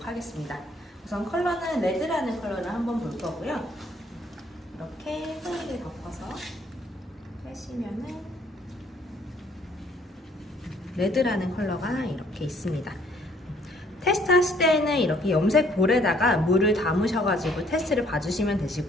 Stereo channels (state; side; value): normal; both; correlation 0.63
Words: 하겠습니다. 우선 컬러는 레드라는 컬러를 한번 볼 거고요. 이렇게 소리를 덮어서 빼시면은 레드라는 컬러가 이렇게 있습니다. 테스트 하실 때에는 이렇게 염색 볼에다가 물을 담으셔가지고 테스트를 봐주시면